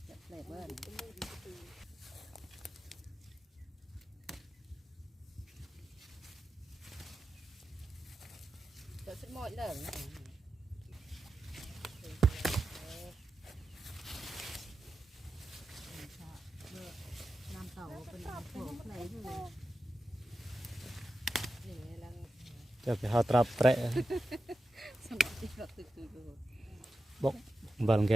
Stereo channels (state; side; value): normal; both; correlation 0.91